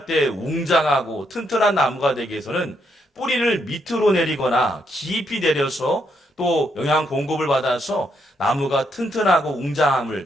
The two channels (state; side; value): normal; both; correlation 0.76